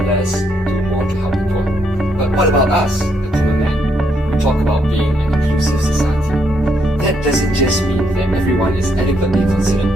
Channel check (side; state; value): both; normal; correlation 0.75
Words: do more to help the poor. But what about us, the common man? We talk about being an inclusive society. That doesn't just mean that everyone is adequately considered